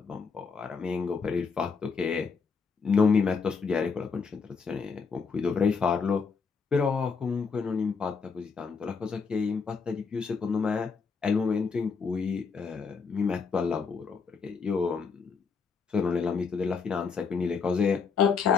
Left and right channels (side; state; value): right; quieter; 5.3 dB